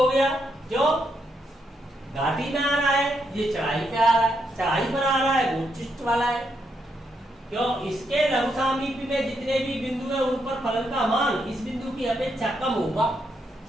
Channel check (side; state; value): both; normal; correlation 0.79